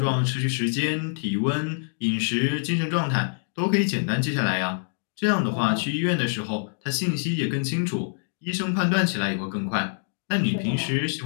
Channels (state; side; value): silent; right; digital silence